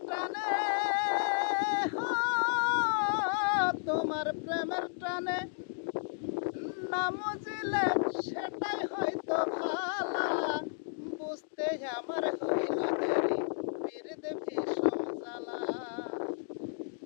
টানে, তোমার প্রেমের টানে না মজিলে সেটাই হয়তো ভালা। বুঝতে আমার হইল দেরি পীড়িত ভীষণ জ্বালা।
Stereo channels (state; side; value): silent; right; digital silence